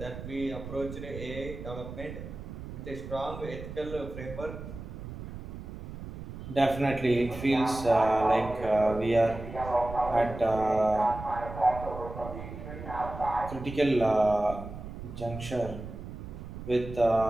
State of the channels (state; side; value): noise; right; rumble, 10 dB below the sound